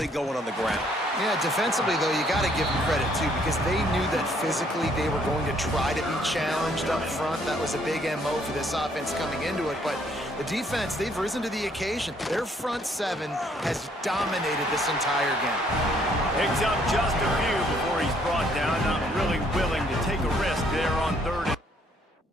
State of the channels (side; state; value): both; normal; correlation 0.66